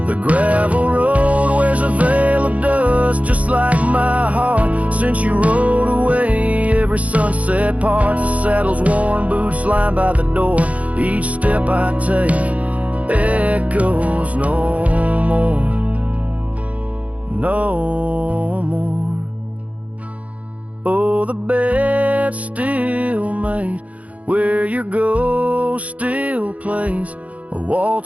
The gravel road wears a veil of dust just like my heart since you rode away. Every sunset parts, the saddle's worn, boots lined by the door. Each step I take echoes no more, no more. Oh, the bed's still made late, where your ghost still plays a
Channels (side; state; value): left; late; 0.068 ms